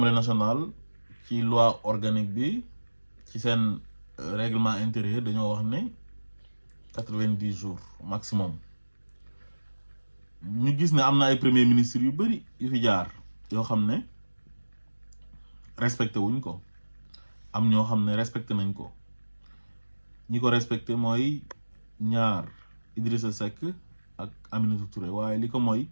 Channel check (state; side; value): inverted; both; correlation -1.00